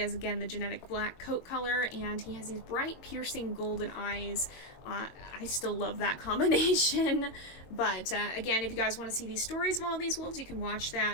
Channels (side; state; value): right; late; 22 ms